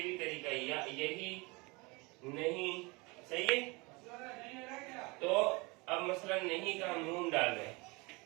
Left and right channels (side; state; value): left; quieter; 26.4 dB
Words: بھی طریقہ ہے, یہی نہیں. صحیح ہے, تو اب مثلا نہیں کا ہم نون ڈال رہے ہیں